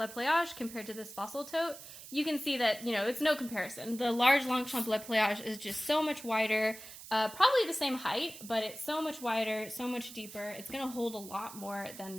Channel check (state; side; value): noise; right; hiss, 14 dB below the sound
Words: compared to this Fossil tote. You can see that, you know, it's no comparison. The large Longchamp Pliage is just so much wider, probably the same height, but it's so much wider, so much deeper. It's going to hold a lot more than